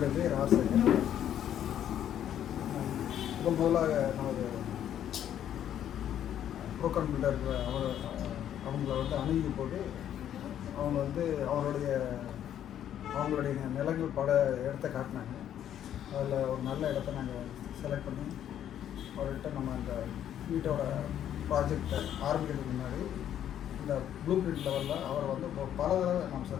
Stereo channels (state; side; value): quieter; right; 10.4 dB